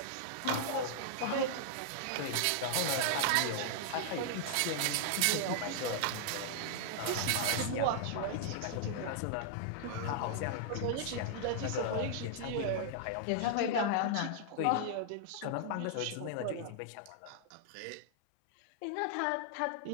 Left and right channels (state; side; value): different; both; correlation -0.01